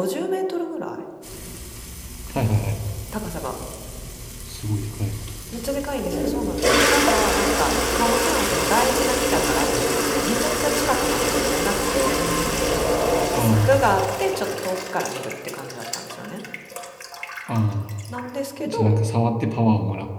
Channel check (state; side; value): identical; both; correlation 1.00